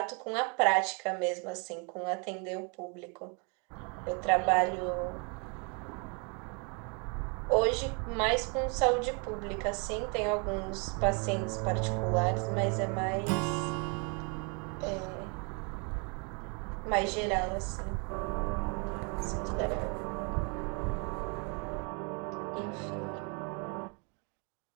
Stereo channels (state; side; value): quieter; left; 34.7 dB